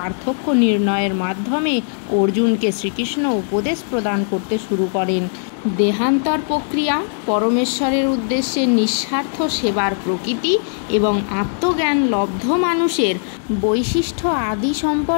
নির্ণয়ের মাধ্যমে অর্জুনকে শ্রীকৃষ্ণ উপদেশ প্রদান করতে শুরু করেন। দেহান্তর প্রক্রিয়া, পরমেশ্বরের উদ্দেশ্যে নিঃস্বার্থ সেবার প্রকৃতি এবং আত্মজ্ঞান লব্ধ মানুষের বৈশিষ্ট্য আদি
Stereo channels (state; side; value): silent; right; digital silence